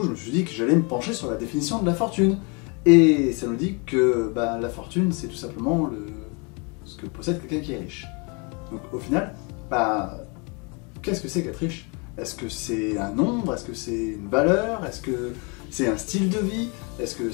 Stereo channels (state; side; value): quieter; right; 32.4 dB